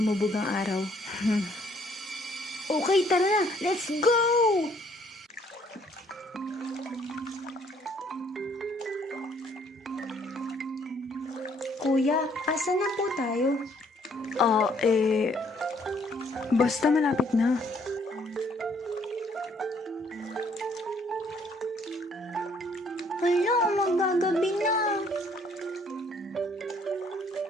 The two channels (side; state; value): both; normal; correlation 0.64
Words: ang araw. Okay, tara na. Let's go! Kuya, asa na po tayo? Basta malapit na. Hala, magagabi na.